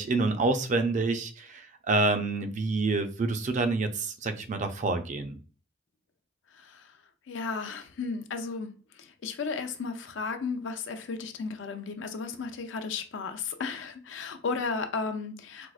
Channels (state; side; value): normal; both; correlation 0.35